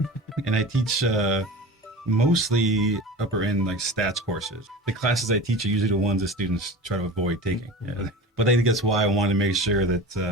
And I teach mostly upper end like stats courses. The classes I teach are usually the ones that students try to avoid taking. Yeah. But I think that's why I wanted to make sure that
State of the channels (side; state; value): both; normal; correlation 0.34